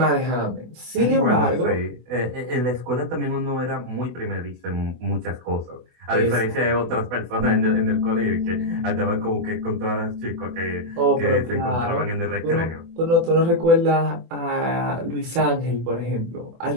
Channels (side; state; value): left; late; 24 ms